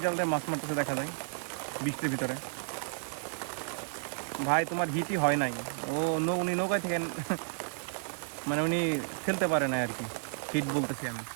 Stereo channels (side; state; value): left; silent; 56 dB below the other